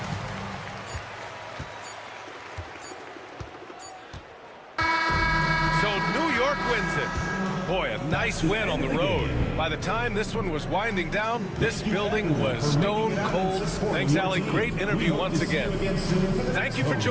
So New York wins it. Boy, a nice win on the road. By the time this one was winding down, this building was stone cold. Thanks, Allie. Great interview once again. Thank you for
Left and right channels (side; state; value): both; identical; correlation 1.00